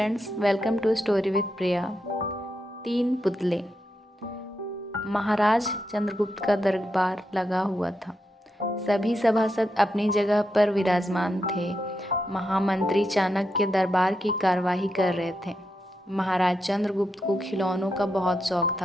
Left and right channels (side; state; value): both; normal; correlation 0.85